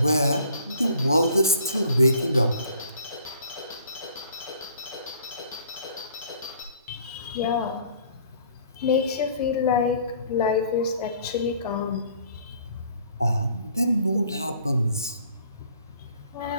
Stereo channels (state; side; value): inverted; both; correlation -0.56